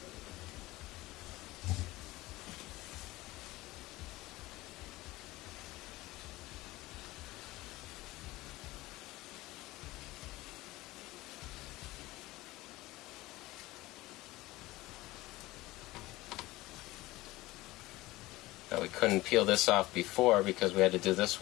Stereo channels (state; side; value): quieter; right; 19.0 dB